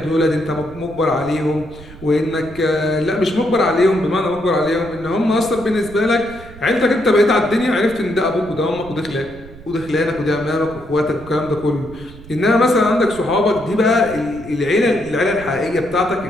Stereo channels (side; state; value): right; noise; rumble, 18 dB below the sound